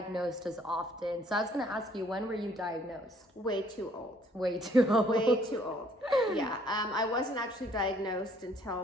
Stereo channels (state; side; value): normal; both; correlation 0.62